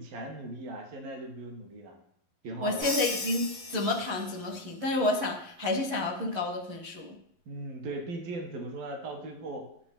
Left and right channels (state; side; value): late; left; 11 ms